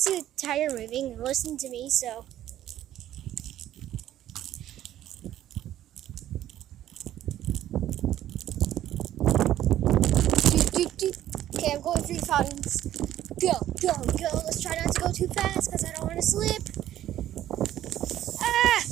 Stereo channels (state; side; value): quieter; left; 12.5 dB